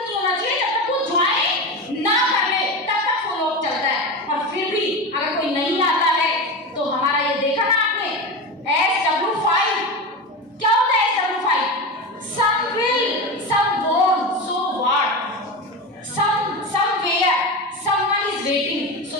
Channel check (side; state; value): both; normal; correlation 0.22